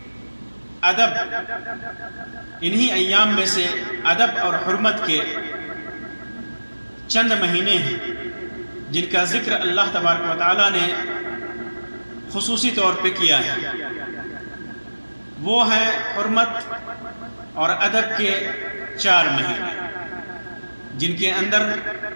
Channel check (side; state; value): both; inverted; correlation -1.00